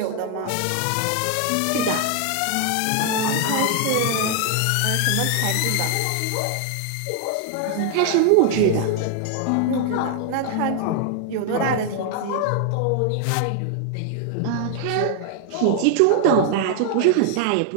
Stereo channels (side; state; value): both; different; correlation 0.00